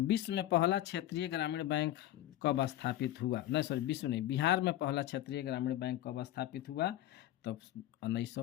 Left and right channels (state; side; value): quieter; right; 13.9 dB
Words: में पहला क्षेत्रीय ग्रामीण बैंक कब स्थापित हुआ, नहीं सॉरी विश्व नहीं, बिहार में पहला क्षेत्रीय ग्रामीण बैंक कब स्थापित हुआ, तब